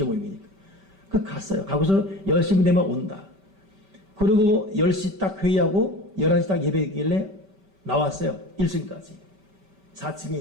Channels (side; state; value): left; late; 5.2 ms